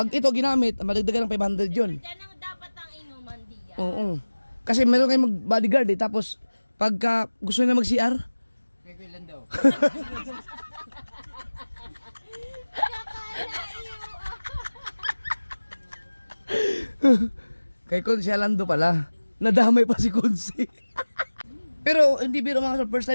ito ginamit, madagdagan ng 500 yun. Yan ang dapat ang inuman diyan. Oo. Kasi meron kayong mag-bodyguard eh. Tapos, pagka gusto nila mag-CR, May kailan daw. kay Konsi Alando pala. Nadamay pa si Konsi. Pero hindi biro mga first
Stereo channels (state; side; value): inverted; both; correlation -1.00